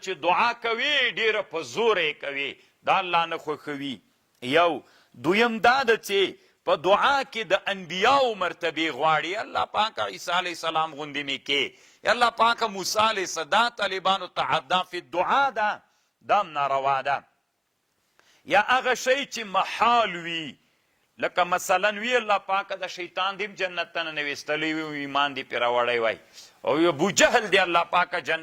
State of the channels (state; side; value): identical; both; correlation 1.00